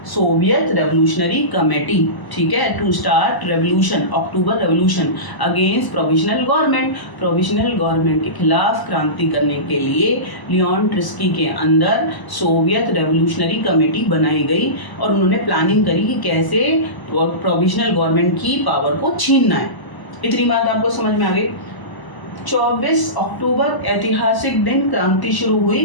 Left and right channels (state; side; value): late; right; 1.0 ms